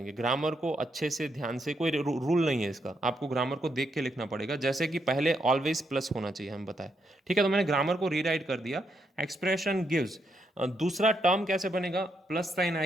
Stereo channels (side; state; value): both; normal; correlation 0.79